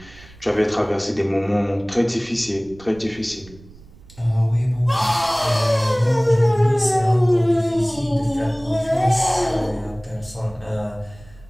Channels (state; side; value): noise; right; rumble, 22 dB below the sound